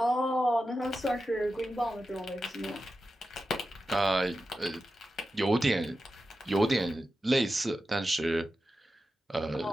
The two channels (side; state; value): both; normal; correlation 0.91